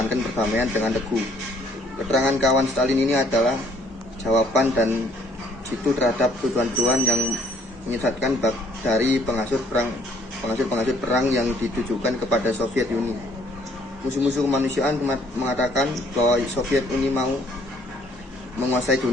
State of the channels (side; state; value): both; normal; correlation 0.63